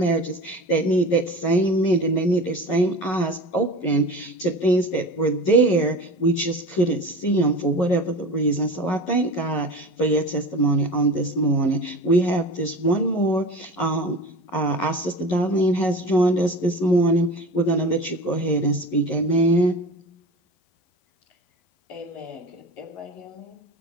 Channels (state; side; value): late; right; 11 ms